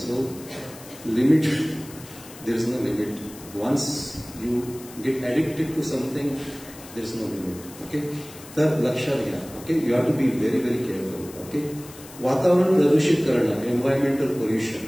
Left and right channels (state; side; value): noise; left; hiss, 18 dB below the sound